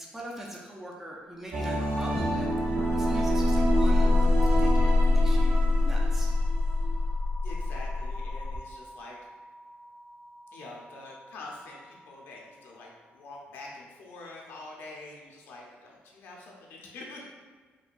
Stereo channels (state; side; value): normal; both; correlation 0.91